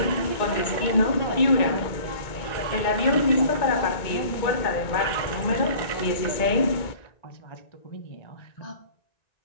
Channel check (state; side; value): late; right; 2.2 ms